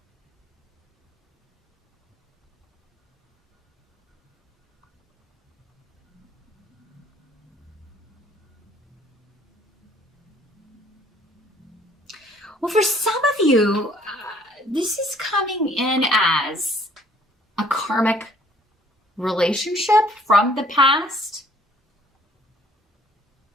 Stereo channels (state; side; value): normal; both; correlation 0.58